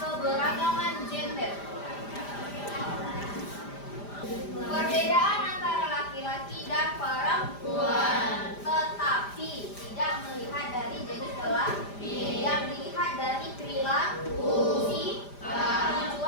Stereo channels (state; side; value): late; right; 5.0 ms